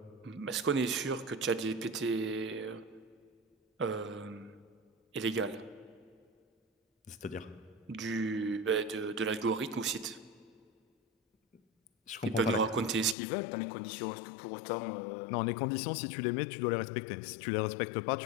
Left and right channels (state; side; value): drops out; right; at 13.2 s